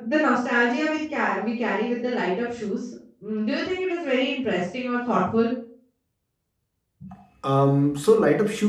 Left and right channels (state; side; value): identical; both; correlation 1.00